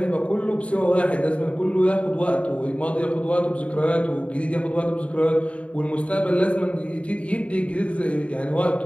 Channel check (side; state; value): right; late; 0.064 ms